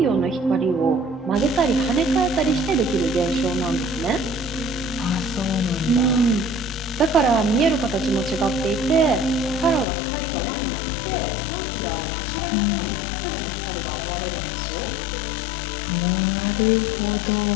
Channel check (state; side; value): drops out; right; at 9.9 s